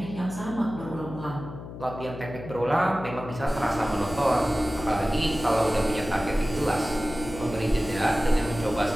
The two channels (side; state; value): left; noise; hum, 11 dB below the sound